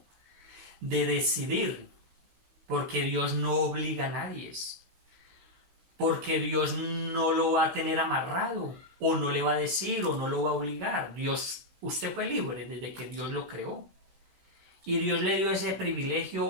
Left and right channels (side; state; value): left; late; 16 ms